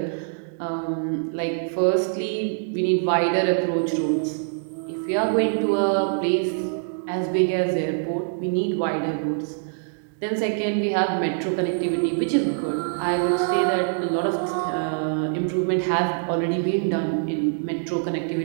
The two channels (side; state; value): left; silent; digital silence